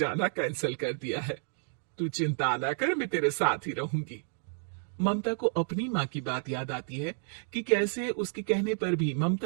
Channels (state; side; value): silent; left; 57 dB below the other